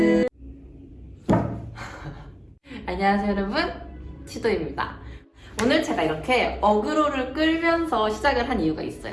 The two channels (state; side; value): identical; both; correlation 1.00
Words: 안녕하세요 여러분, 치도입니다. 오늘 제가 이렇게 어그로를 끌면서 시작을 한 이유가 있어요.